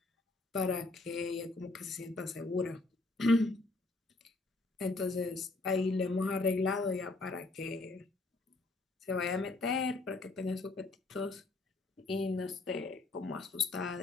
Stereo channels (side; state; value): right; quieter; 3.2 dB